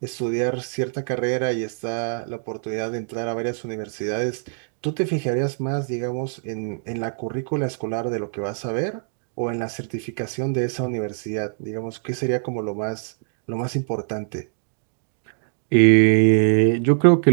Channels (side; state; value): left; silent; digital silence